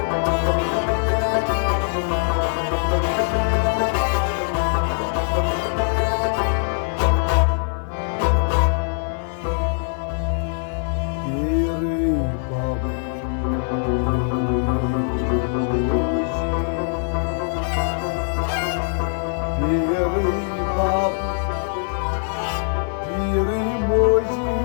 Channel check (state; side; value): silent; right; 57 dB below the other